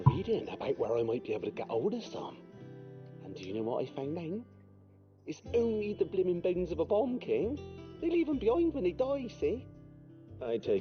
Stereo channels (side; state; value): both; identical; correlation 1.00